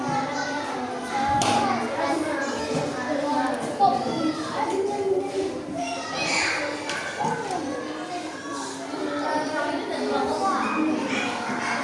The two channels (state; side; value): identical; both; correlation 1.00